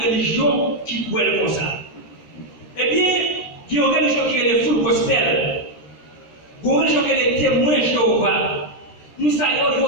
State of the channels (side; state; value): right; late; 13 ms